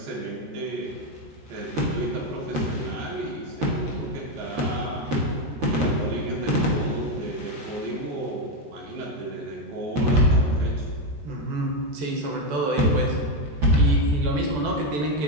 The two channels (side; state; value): left; late; 14 ms